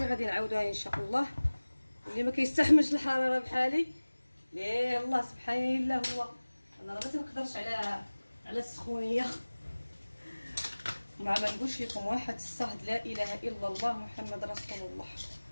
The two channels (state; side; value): inverted; both; correlation -1.00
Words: غادي نعاودوها ان شاء الله. اللي ما كيستحملش الحراره بحالي ليه الله سبحان الله، هو انا راه ما تنقدرش على السخونيه. ما نقولش لكم واحد الصهد لا اله الا الله محمد رسول الله.